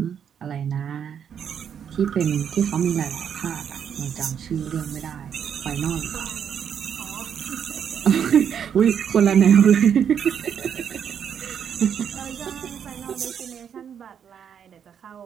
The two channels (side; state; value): left; quieter; 8.1 dB